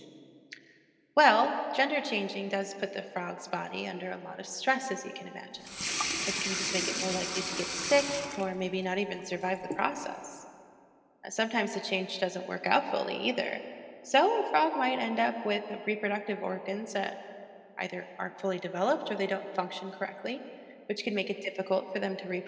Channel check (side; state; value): both; identical; correlation 1.00